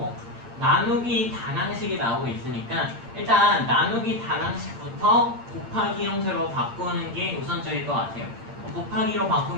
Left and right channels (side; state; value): left; late; 8.7 ms